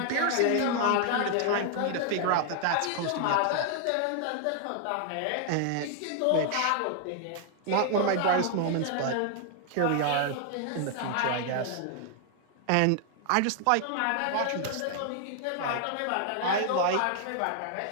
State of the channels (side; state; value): both; different; correlation 0.00